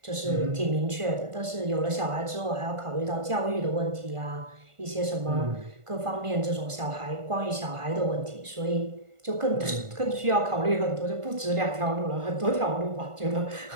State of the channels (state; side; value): late; left; 1.5 ms